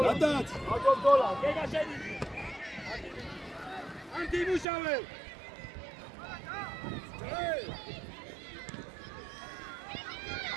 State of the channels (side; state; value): left; drops out; at 4.7 s